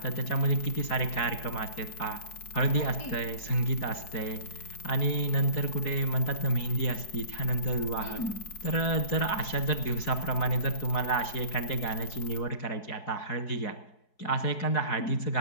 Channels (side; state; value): right; late; 4.7 ms